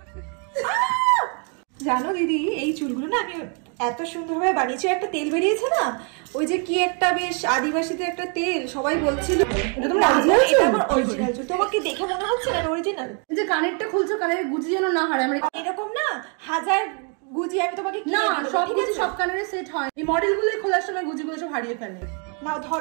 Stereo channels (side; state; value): left; quieter; 39.0 dB